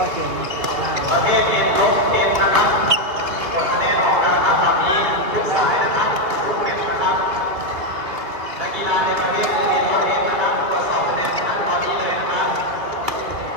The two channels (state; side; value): late; left; 2.7 ms